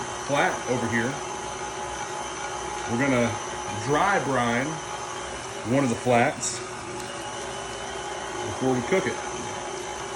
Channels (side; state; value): both; identical; correlation 1.00